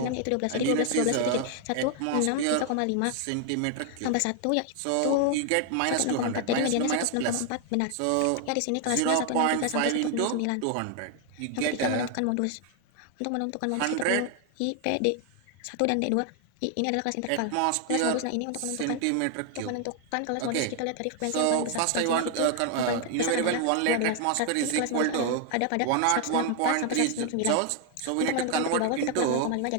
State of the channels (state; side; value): different; both; correlation 0.00